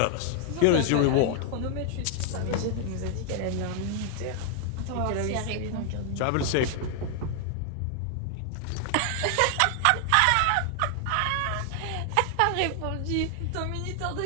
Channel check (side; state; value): both; different; correlation 0.00